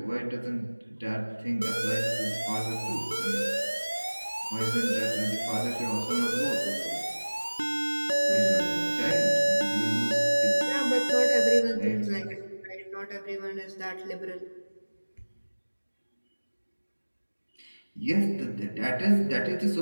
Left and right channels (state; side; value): inverted; both; correlation -1.00